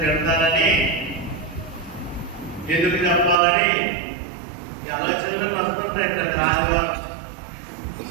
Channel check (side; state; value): left; drops out; at 3.4 s